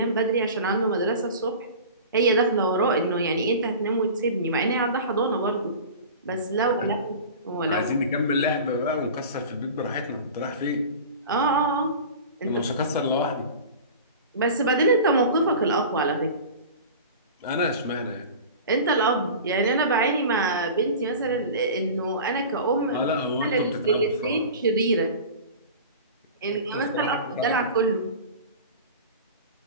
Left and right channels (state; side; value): inverted; both; correlation -0.36